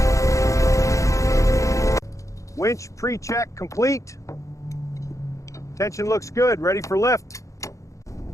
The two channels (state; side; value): late; right; 0.15 ms